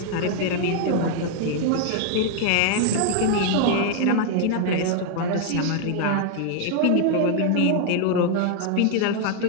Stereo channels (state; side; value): different; both; correlation 0.00